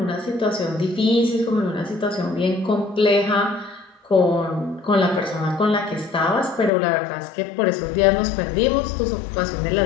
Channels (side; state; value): right; drops out; at 6.7 s